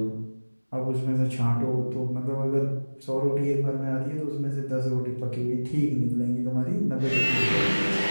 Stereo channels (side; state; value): both; inverted; correlation -1.00